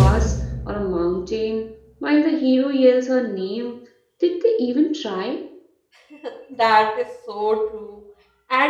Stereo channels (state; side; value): identical; both; correlation 1.00